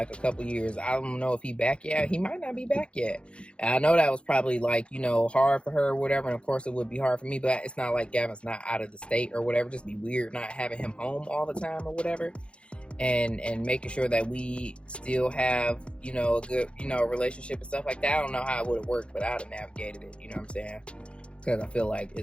a couple years. I don't know if he back yet. He might not be back yet. And I know that was probably like, hard for her or whatever. And of course it would be hard for me, but it's not like Gavin's not out of the state or whatever. Just be weird not having him home all the time or whatever. And making sure that we still have, a good, relationship and stuff like that. I don't know how it would have worked, but I'd have navigated it, you know what I'm saying? Because I feel like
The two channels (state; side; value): late; right; 0.058 ms